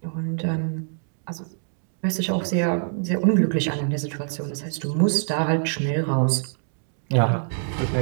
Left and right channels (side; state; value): left; silent; 62 dB below the other